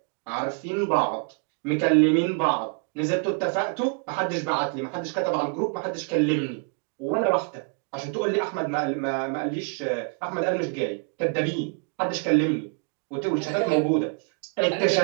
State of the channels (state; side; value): quieter; left; 38.5 dB